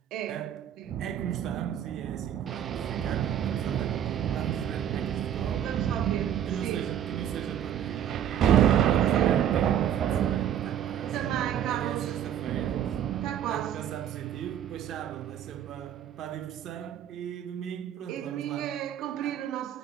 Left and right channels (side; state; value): left; quieter; 9.9 dB